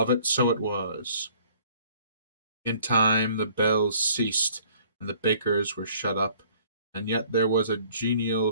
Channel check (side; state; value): both; inverted; correlation -0.56